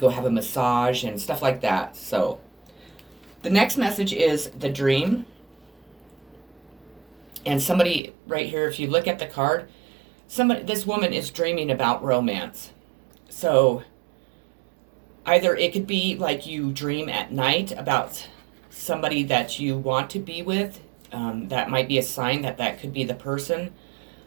have a massage and stuff like that. So the next message is the dream. And somebody right here, if you look at the card, this woman is dreaming about romance. So either it could be like you dream at night about somebody that you want to be with. That might be a sign that could be the person.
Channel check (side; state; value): left; drops out; at 8.0 s